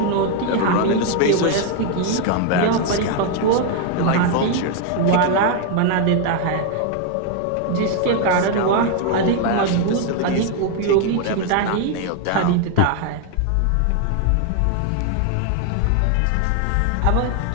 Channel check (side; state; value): both; different; correlation 0.01